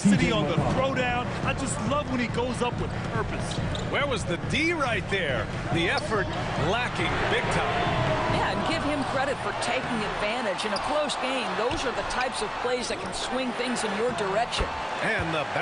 on the throwdown. I just love when he goes up with purpose. Where was the D right there? The effort lacking big time. Yeah, and give him credit for taking advantage. In a close game, those are the types of plays that can swing things in your direction. And the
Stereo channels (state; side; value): identical; both; correlation 1.00